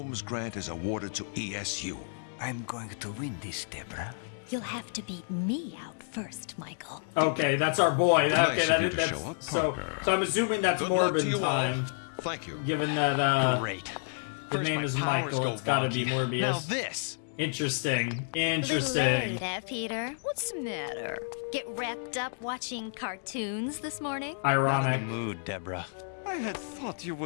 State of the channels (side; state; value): right; silent; digital silence